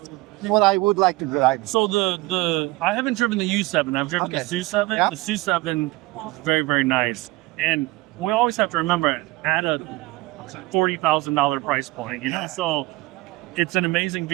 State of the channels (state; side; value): quieter; left; 20.4 dB